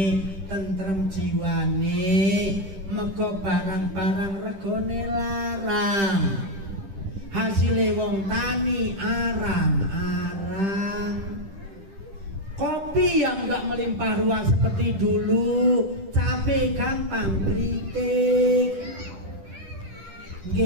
tentrem jiwane, meko barang-barang regone larang, hasilnya wong tani arang-arang. Kopi yang nggak melimpah ruah seperti dulu, cabai gampang kritik,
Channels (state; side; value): late; left; 10 ms